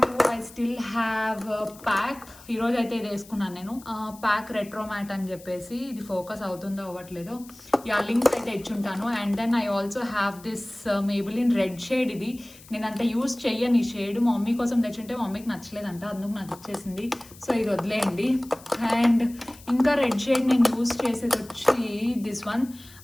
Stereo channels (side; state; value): left; noise; hiss, 21 dB below the sound